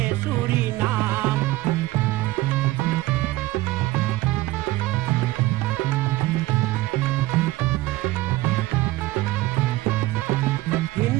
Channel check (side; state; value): left; quieter; 18.1 dB